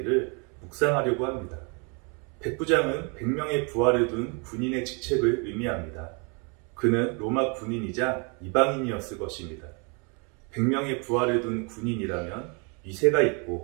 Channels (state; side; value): quieter; left; 34.2 dB